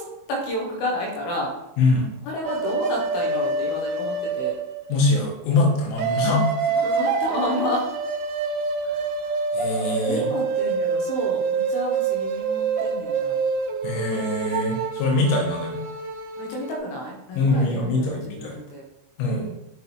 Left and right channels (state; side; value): late; right; 23 ms